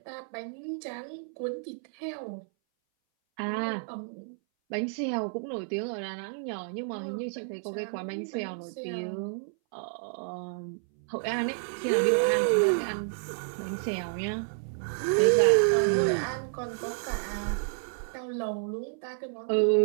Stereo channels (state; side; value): silent; left; 58 dB below the other